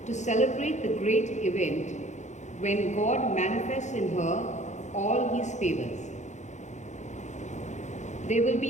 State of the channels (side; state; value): right; late; 0.34 ms